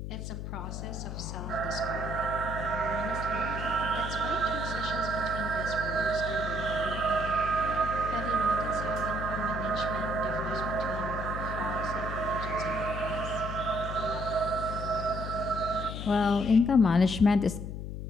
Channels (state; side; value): noise; left; hum, 6 dB below the sound